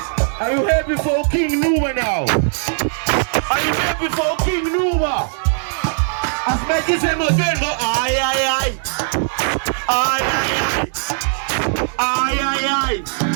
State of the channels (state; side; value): silent; left; digital silence